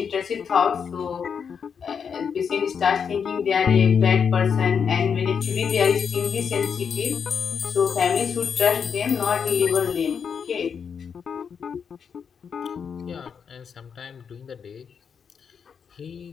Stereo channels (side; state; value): right; quieter; 6.7 dB